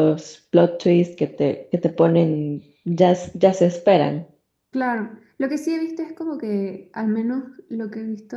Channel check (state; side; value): identical; both; correlation 1.00